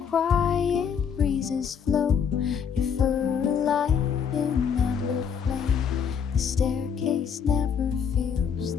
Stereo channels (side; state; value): right; quieter; 7.2 dB